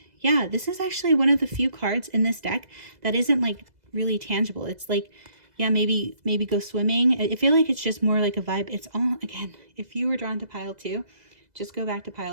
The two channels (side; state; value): left; late; 2.0 ms